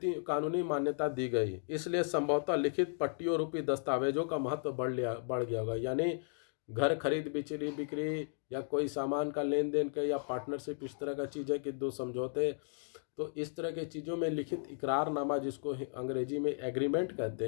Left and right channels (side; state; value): right; silent; digital silence